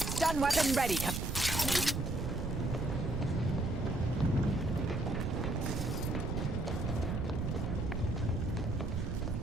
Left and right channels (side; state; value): right; noise; rumble, 1 dB below the sound